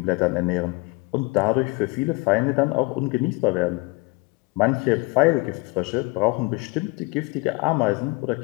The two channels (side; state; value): right; quieter; 26.0 dB